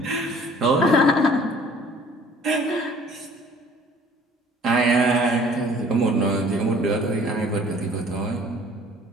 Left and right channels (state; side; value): normal; both; correlation 0.53